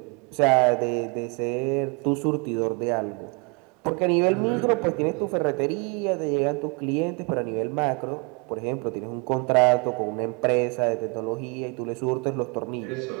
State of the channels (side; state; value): left; quieter; 32.5 dB